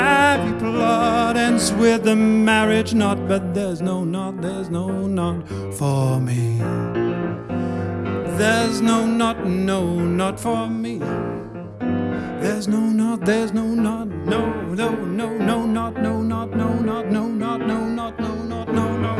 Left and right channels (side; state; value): both; identical; correlation 1.00